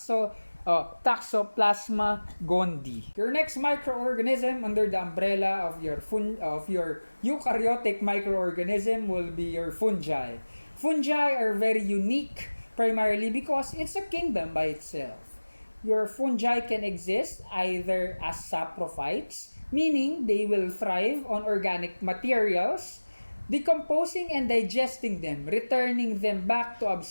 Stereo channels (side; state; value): both; inverted; correlation -1.00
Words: Toxoplasma gondii. Your next microorganism under the umbrella of your eukaryotic microorganism will be your fungi. Fungi are very unique primarily because it's a kingdom by itself. Your fungi can exist either as saprophytes, meaning they will thrive on organic materials, decomposing and digesting them, returning them back to